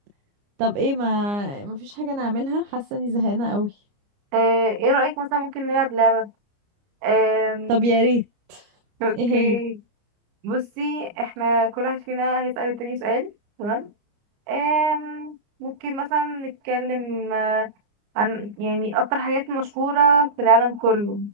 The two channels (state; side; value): late; left; 29 ms